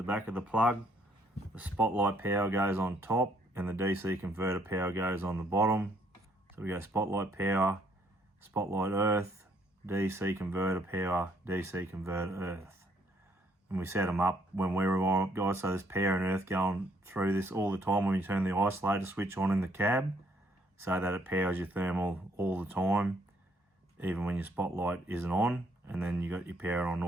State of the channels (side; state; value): both; normal; correlation 0.68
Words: back of the plug, the spotlight power goes on top and the DC converter power goes on the bottom. So we go spotlight power, spotlight earth, DC converter power, DC converter earth. And we set them up when we rewire up, guys, so there's power and earth going through this all the time when you turn the isolator switch on in the cab, so that it powers your thermal all the time, even when your spotlight isn't on. And then you got your power on and